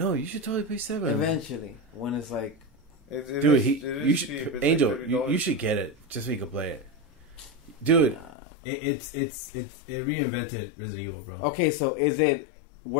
you should totally play 7. Eventually, when it's like, Dude, you should. Angel, you should get it just so you can play it. Dude, it reinvented Resident Evil, bro. okay, so is it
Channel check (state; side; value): drops out; right; at 8.3 s